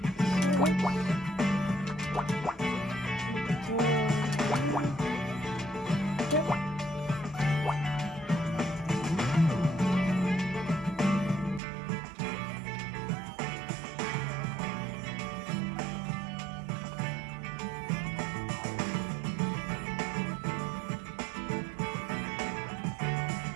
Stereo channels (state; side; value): drops out; left; at 11.6 s